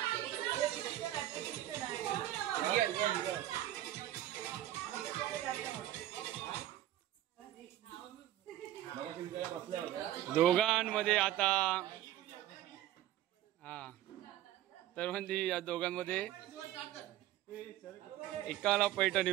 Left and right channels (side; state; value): left; quieter; 13.5 dB